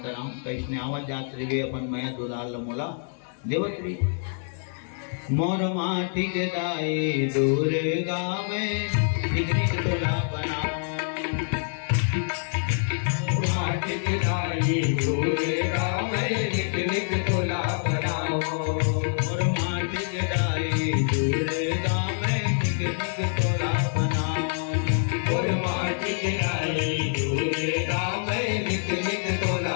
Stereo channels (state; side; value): silent; right; digital silence